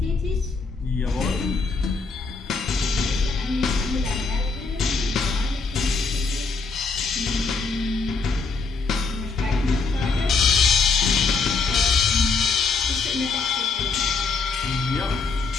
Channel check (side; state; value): right; quieter; 4.4 dB